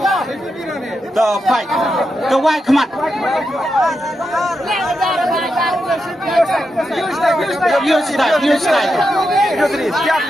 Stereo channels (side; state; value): both; normal; correlation 0.86